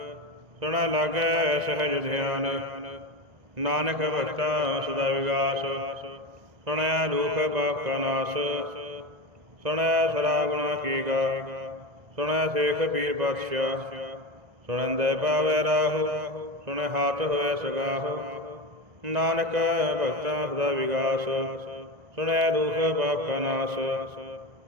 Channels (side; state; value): left; late; 2.0 ms